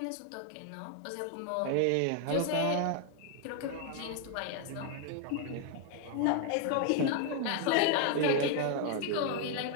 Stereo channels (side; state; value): both; different; correlation 0.00